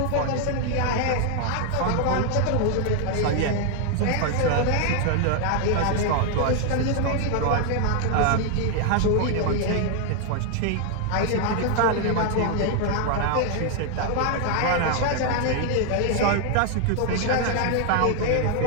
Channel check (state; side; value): different; both; correlation 0.00